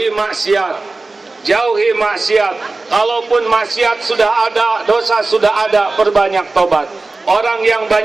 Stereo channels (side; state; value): left; quieter; 3.4 dB